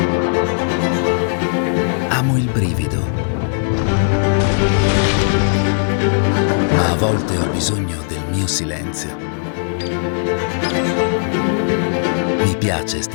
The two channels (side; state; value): right; silent; 58 dB below the other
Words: Amo il brivido. Ma a volte ho bisogno del mio silenzio. Mi piace